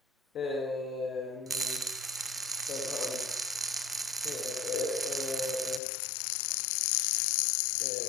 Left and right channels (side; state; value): right; drops out; at 5.8 s